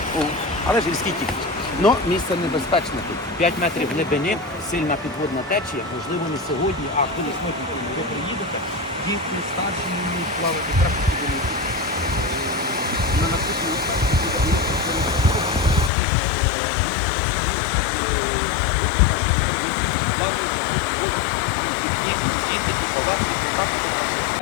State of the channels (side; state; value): right; drops out; at 15.9 s